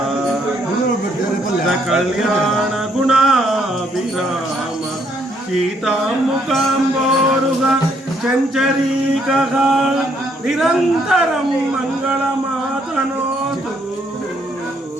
कल्याण गुणाभिराम सीतामुखाम्बोरुह चञ्चरीकः निरन्तरं मङ्गलमातनोतु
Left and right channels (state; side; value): normal; both; correlation 0.70